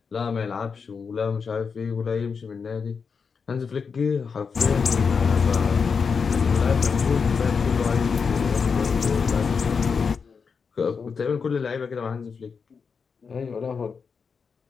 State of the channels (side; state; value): right; quieter; 5.7 dB